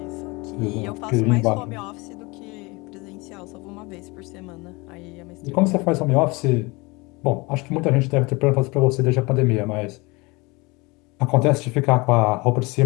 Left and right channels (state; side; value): quieter; right; 25.3 dB